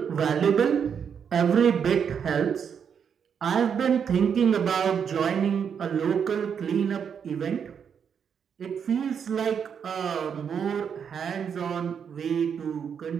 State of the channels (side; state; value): left; quieter; 7.3 dB